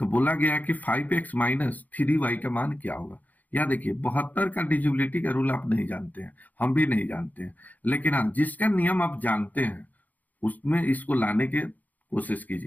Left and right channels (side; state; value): right; late; 0.080 ms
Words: बोला गया है कि 5x माइनस 3y का मान क्या होगा। यह देखिए 72 का डिजिबिलिटी का रूल आप नहीं जानते हैं, हम भी नहीं जानते हैं, लेकिन हाँ जिसका नियम आप जानते हैं उसमें इसको लाने की कोशिश